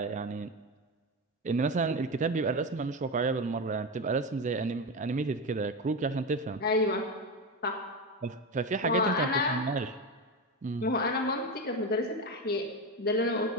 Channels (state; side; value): normal; both; correlation 0.17